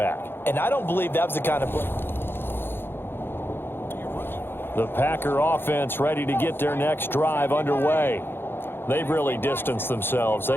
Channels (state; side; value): late; right; 0.10 ms